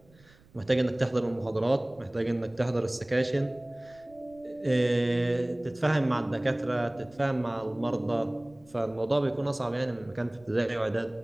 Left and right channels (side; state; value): right; noise; rumble, 28 dB below the sound